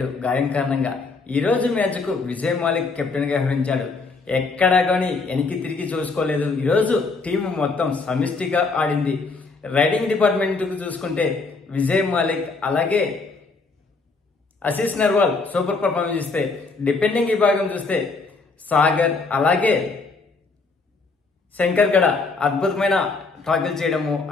గాయం కారణంగా. ఈ రోజు మ్యాచ్ కు విజయ్ మాలిక్ కెప్టెన్ గా వ్యవహరించాడు. ఎక్కడా కానీ వెనక్కి తిరిగి చూసుకోలేదు. ఈ రోజు టీం మొత్తం సమిష్టిగా ఆడింది. రైడింగ్ డిపార్ట్మెంట్ కు చూసుకుంటే విజయ్ మాలిక్ అలాగే ఆశీష్ నర్వాల్ సూపర్ పర్ఫార్మెన్స్ ఇస్తే, డిపెండింగ్ విభాగం చూస్తే సాగర్ అలాగే శంకర్ గడ అద్భుతమైన టాకిల్ చేయడము,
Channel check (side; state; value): right; quieter; 4.0 dB